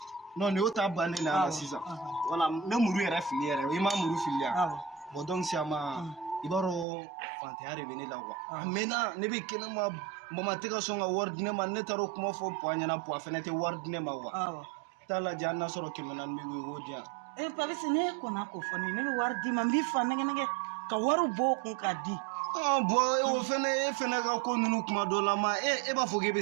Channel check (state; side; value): drops out; left; at 6.9 s